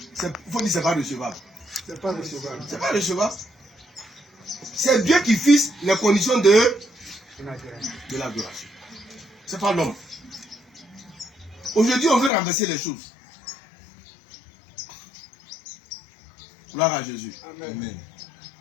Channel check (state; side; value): drops out; right; at 12.3 s